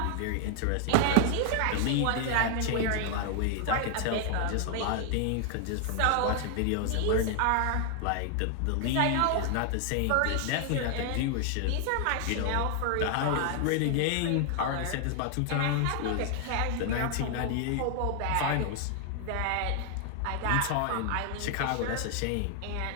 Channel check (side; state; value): both; different; correlation 0.00